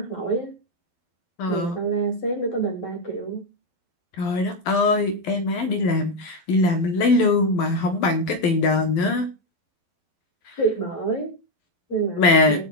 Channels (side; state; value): right; late; 12 ms